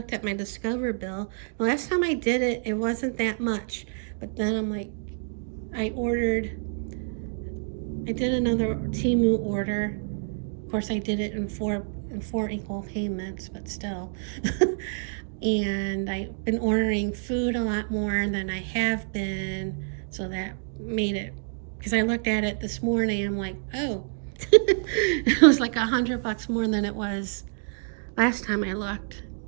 at my Discover bill. The last time I did it, it wasn't that much, but then I'm like, I did another Temu order. Of course, I did it in four equal payments, but still. And I've been ordering food a lot more than I have been, so that made it, because I looked at it this morning, I'm like, oh, it was like $100 more than it was last time I looked.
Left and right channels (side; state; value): left; silent; digital silence